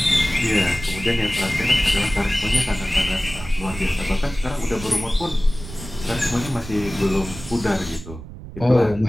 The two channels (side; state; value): right; noise; rumble, 13 dB below the sound